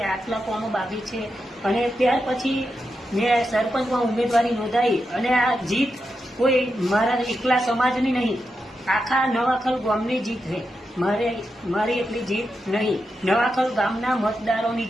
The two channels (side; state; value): both; normal; correlation 0.87